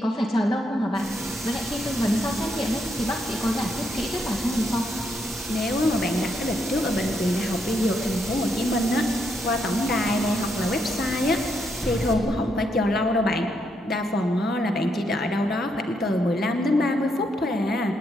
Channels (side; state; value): both; normal; correlation 0.78